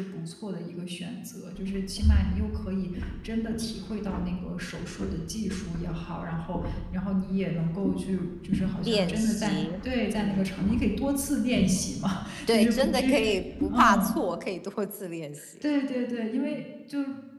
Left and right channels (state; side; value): identical; both; correlation 1.00